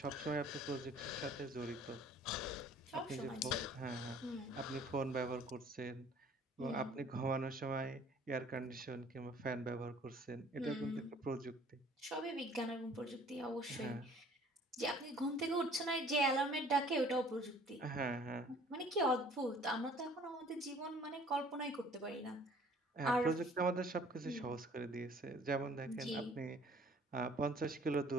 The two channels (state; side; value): normal; both; correlation 0.53